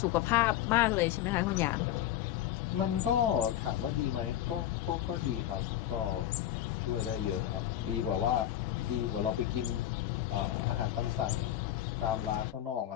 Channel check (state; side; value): quieter; right; 12.2 dB